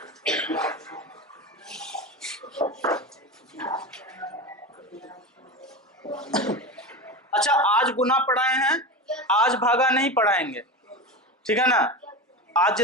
अच्छा, आज गुना पढ़ाए हैं, आज भागा नहीं पढ़ाएंगे, ठीक है ना। आज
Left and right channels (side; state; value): both; normal; correlation 0.24